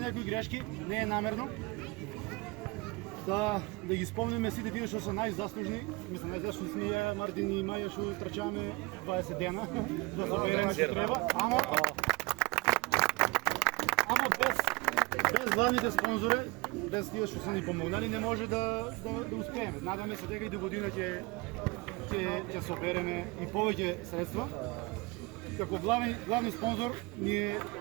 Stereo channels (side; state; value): left; quieter; 24.6 dB